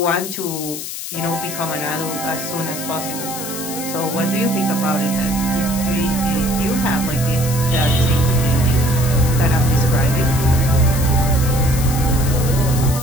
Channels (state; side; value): noise; left; hiss, 8 dB below the sound